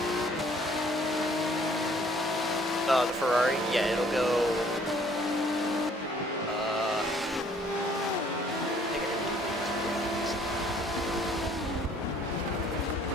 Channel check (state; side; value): normal; both; correlation 0.59